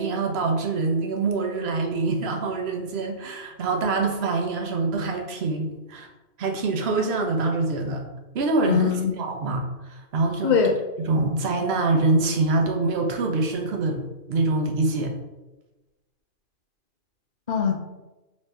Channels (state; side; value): late; left; 3.0 ms